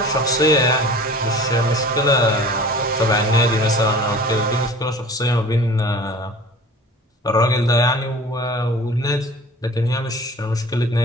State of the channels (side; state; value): both; normal; correlation 0.43